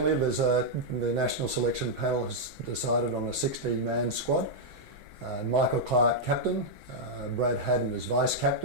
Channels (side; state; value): both; normal; correlation -0.05